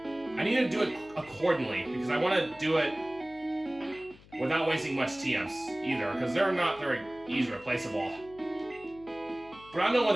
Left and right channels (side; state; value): left; noise; hum, 23 dB below the sound